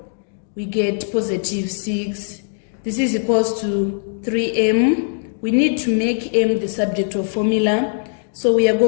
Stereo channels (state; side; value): silent; right; digital silence